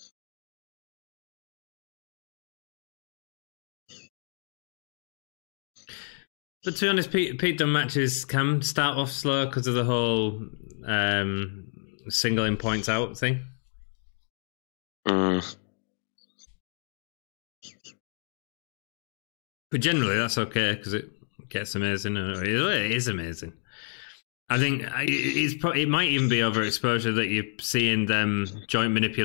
But to be honest, Pete Dunne matches can start off slow because of the whole singling points out thing. But generally, that's okay because it gets amazing. It is amazing. I think it might even be overexposure that you're seeing them joint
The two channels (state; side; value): silent; right; digital silence